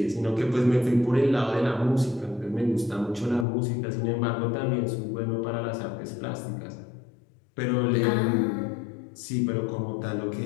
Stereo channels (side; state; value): right; drops out; at 3.5 s